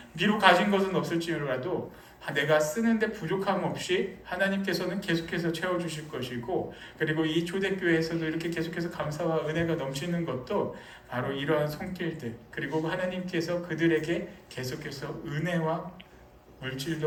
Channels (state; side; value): identical; both; correlation 1.00